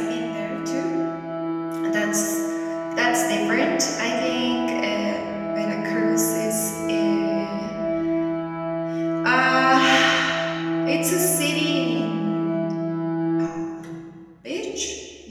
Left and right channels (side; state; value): both; identical; correlation 1.00